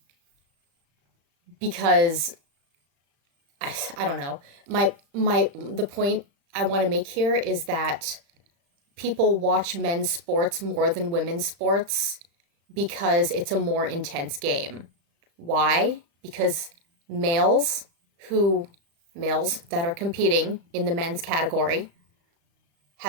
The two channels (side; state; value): left; late; 35 ms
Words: because I don't know. The point I want to make here is that people watch men's sports more than women's sports because it's a more intense game. Why? Because males that are competing in the men's category